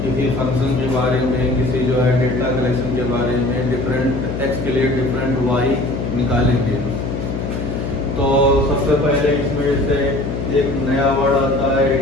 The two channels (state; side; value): noise; left; hum, 4 dB below the sound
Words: किसी फंक्शन के बारे में, किसी जो है डेटा कलेक्शन के बारे में डिफरेंट एक्स के लिए डिफरेंट वाई निकालेंगे। तो सबसे पहले इसमें से एक नया वर्ड आता है